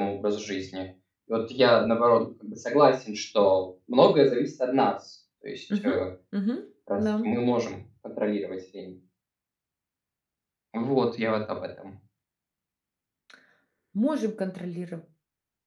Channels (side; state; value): both; identical; correlation 1.00